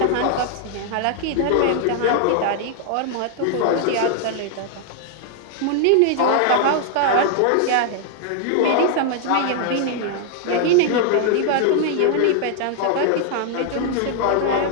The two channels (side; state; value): both; different; correlation 0.00